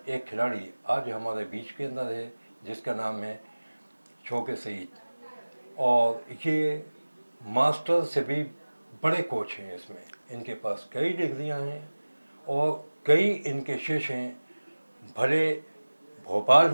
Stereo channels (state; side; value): inverted; both; correlation -1.00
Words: एक खिलाड़ी आज हमारे बीच के अंदर है जिसका नाम है शौके सईद, और ये मास्टर से भी बड़े कोच हैं। इसमें इनके पास कई डिग्रियां हैं और कई इनके शिष्य हैं, भले भोपाल